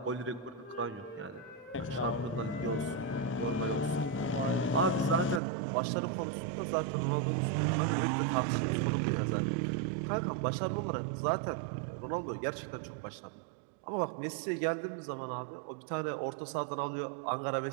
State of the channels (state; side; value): drops out; left; at 5.4 s